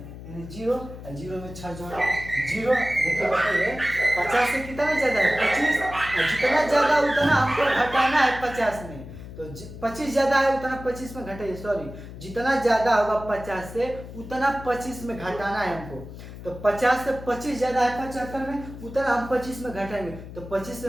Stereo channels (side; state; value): left; noise; hum, 13 dB below the sound